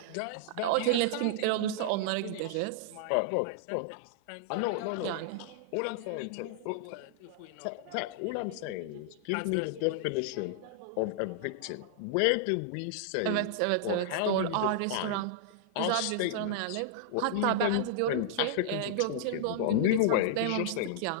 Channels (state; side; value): different; both; correlation -0.01